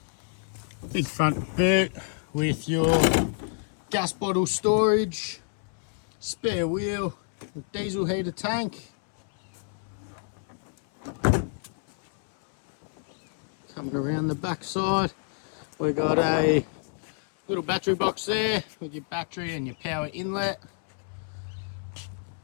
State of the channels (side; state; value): right; silent; 59 dB below the other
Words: Big front boot with your gas bottle storage, spare wheel, diesel heater tank. Coming around the back side, we've got a little battery box there with your battery and your power inlet.